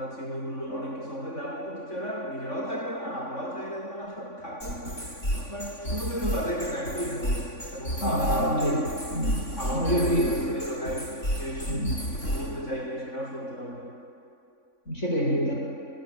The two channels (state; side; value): late; right; 3.5 ms